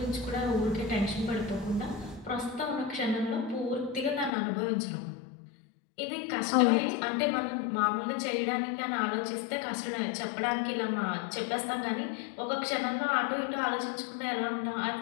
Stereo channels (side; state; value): right; drops out; at 4.3 s